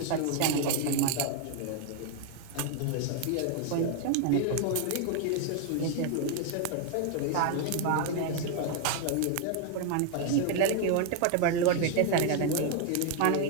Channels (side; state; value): both; different; correlation 0.01